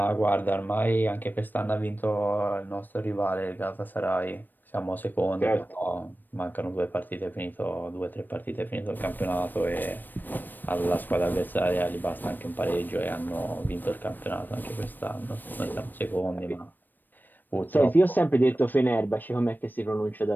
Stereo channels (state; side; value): late; right; 0.091 ms